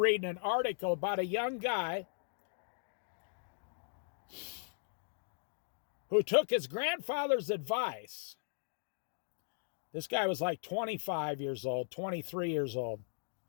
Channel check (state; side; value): silent; right; digital silence